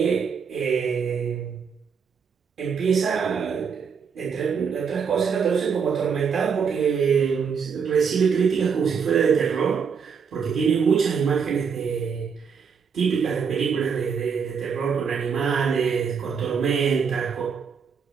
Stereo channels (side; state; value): left; quieter; 6.3 dB